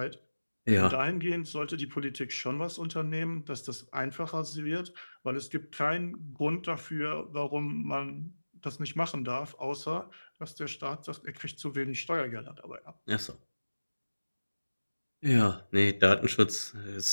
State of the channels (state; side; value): inverted; both; correlation -1.00